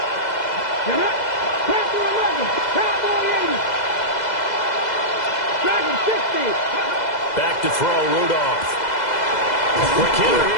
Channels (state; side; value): late; right; 2.0 ms